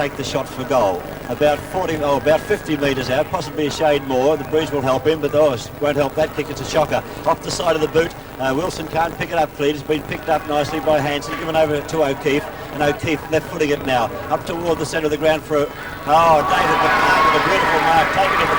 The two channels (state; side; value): identical; both; correlation 1.00